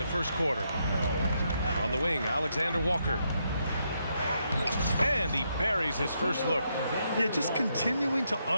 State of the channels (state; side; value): inverted; both; correlation -0.79